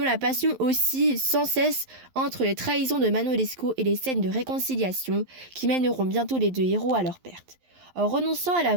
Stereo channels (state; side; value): late; left; 11 ms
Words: passion oscille sans cesse entre les trahisons de Manon Lescaut et les scènes de réconciliation qui mèneront bientôt les deux héros à leur perte. En renonçant à la